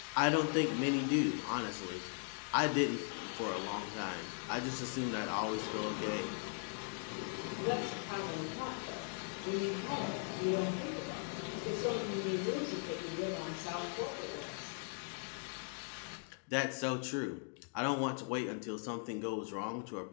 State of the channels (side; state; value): right; silent; 52 dB below the other